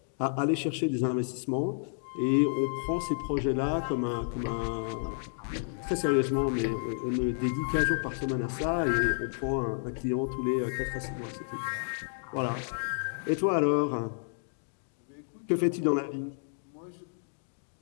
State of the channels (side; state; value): right; silent; digital silence